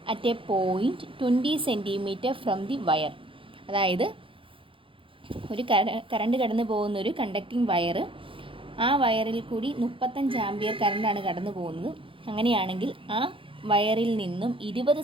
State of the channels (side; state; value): left; late; 0.25 ms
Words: at a point 20 cm from the wire? അതായത് ഒരു കറണ്ട് കടന്നു പോകുന്ന ഒരു കണ്ടക്റ്റിംഗ് വയർ, ആ വയറിൽ കൂടി 35 ആംപിയർ കറണ്ടാണ് കടന്നു പോകുന്നത്. അങ്ങനെയാണെങ്കിൽ ആ വയറിൽ നിന്നും 20